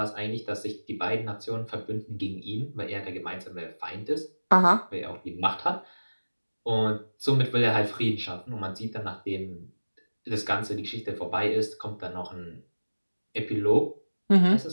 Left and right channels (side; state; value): both; inverted; correlation -1.00